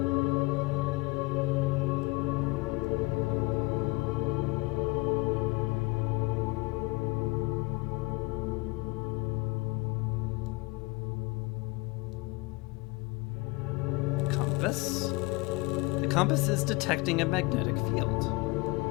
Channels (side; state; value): right; quieter; 24.5 dB